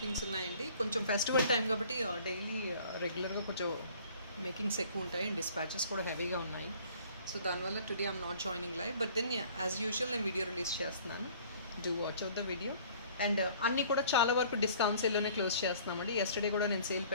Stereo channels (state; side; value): inverted; both; correlation -0.53